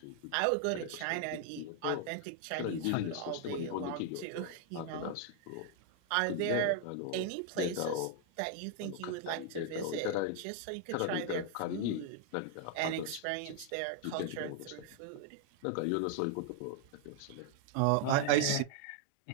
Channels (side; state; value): both; different; correlation 0.00